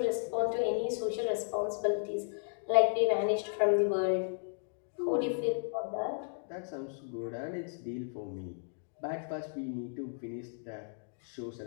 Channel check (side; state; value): right; silent; digital silence